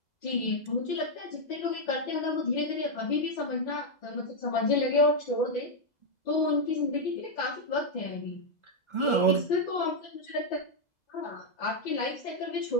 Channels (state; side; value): late; right; 2.0 ms